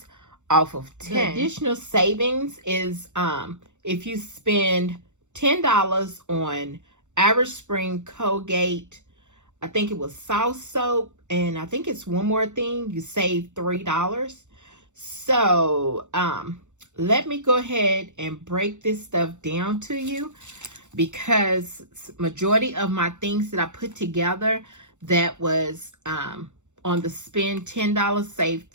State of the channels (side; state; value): left; late; 0.84 ms